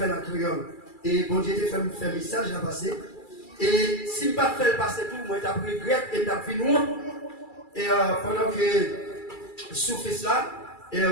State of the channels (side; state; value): right; late; 2.3 ms